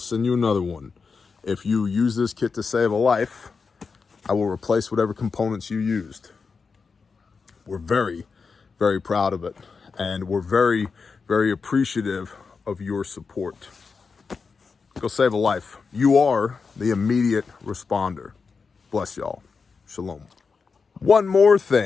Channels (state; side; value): quieter; right; 5.0 dB